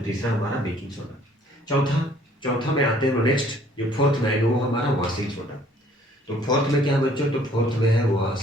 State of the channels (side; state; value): both; normal; correlation 0.59